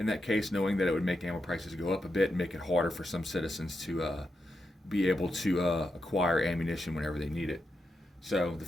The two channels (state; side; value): normal; both; correlation 0.85